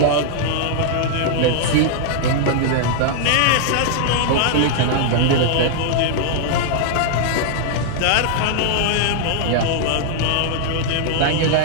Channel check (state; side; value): different; both; correlation -0.01